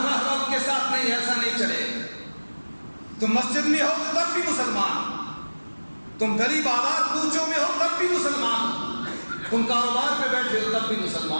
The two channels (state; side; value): inverted; both; correlation -1.00